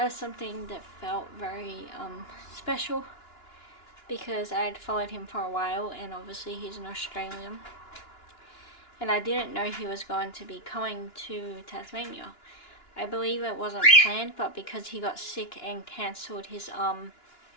was something that felt very special, because I had followed him for a while, and obviously he's an Australian, and I didn't know he was going to be coming to Tasmania. I believe it wasn't planned, but because he got sick and cancelled his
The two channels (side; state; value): right; late; 2.9 ms